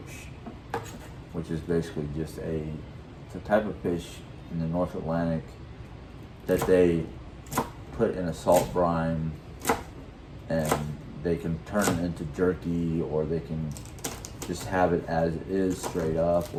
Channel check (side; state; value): both; identical; correlation 1.00